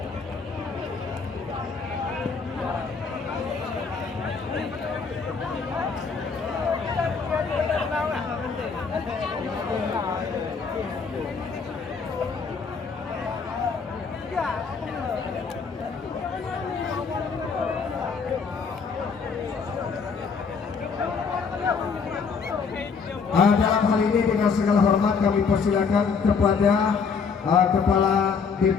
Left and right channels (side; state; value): right; quieter; 5.4 dB